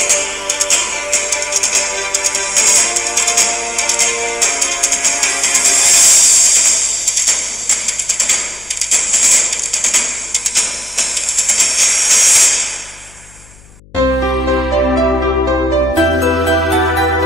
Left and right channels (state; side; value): noise; left; hum, 25 dB below the sound